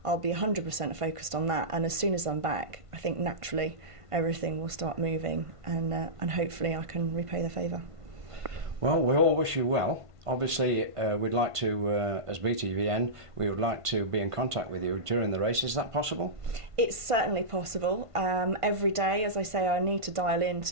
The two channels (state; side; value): late; left; 1.5 ms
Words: I'll be 100% focused on that, and as soon as I'm back, I think naturally everything will start moving, and hopefully I can repay the favour. Well, we all wish you well. Obviously, we'd like to, as BTVN, we would like to be in contact with you during the race. Is that possible? It's certainly possible. Every day, as I say, I need to dial in